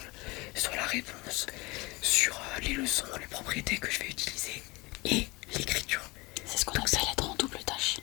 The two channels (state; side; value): quieter; right; 24.1 dB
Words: sur la réponse, sur les leçons, les propriétés que je vais utiliser et l'écriture. C'est ce qu'on appelle être en double tâche.